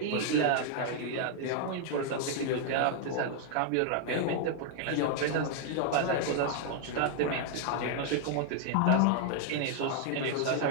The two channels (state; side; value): different; both; correlation 0.00